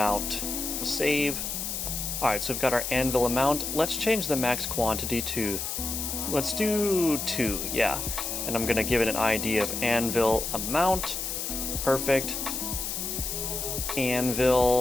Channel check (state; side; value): noise; left; hiss, 3 dB below the sound